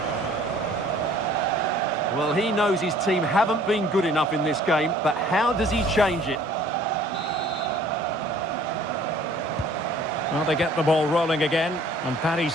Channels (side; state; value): both; normal; correlation 0.54